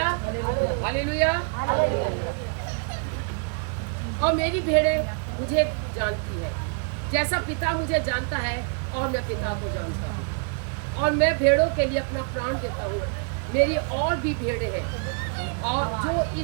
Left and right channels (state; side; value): quieter; left; 38.6 dB